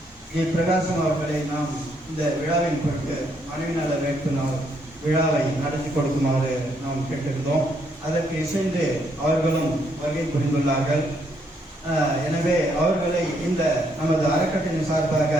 ஜி பிரகாசம் அவர்களை நாம் இந்த விழாவின் பொருட்டு மனைவி நல வேட்பு நாள் விழாவை நடத்தி கொடுக்குமாறு நாம் கேட்டிருந்தோம். அதற்கு இசைந்து அவர்களும் வருகை புரிந்துள்ளார்கள். எனவே அவர்களை இந்த நமது அறக்கட்டளையின் சார்பாக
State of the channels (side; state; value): both; normal; correlation 0.73